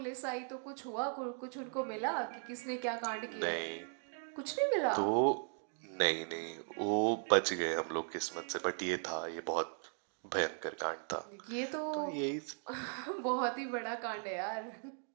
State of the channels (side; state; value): left; silent; 53 dB below the other